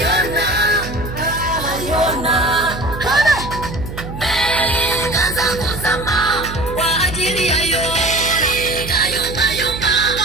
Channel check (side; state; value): right; noise; hum, 9 dB below the sound